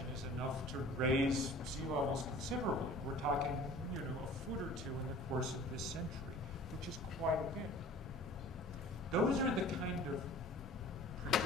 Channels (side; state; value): both; normal; correlation 0.46